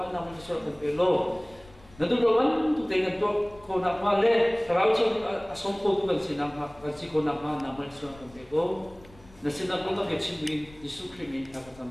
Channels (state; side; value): noise; left; rumble, 24 dB below the sound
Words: nama Malaysia Campaing lo. Nanti doan tu dengan tu kau nak male kalau tu asal kau tu kan si nama si kau nama Malaysia Campaing lo. Nasi nak kau tak kecil Yesus Kristus tak